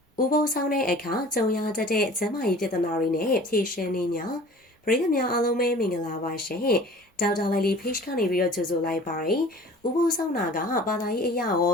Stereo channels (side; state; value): both; normal; correlation 0.45